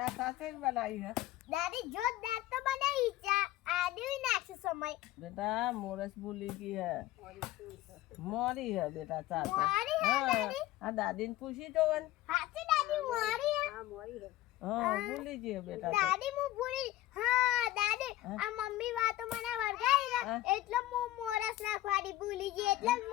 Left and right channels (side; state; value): right; quieter; 15.6 dB